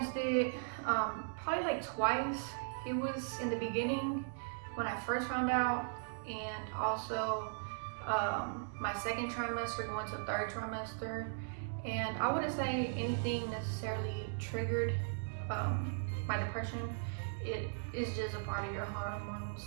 it probably like twice. It was in the beginning when I first found out, and also my 2nd trimester going to 3rd trimester. And I wouldn't say anything necessarily triggered my depression. It is just a part of your hormones,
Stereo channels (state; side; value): silent; left; digital silence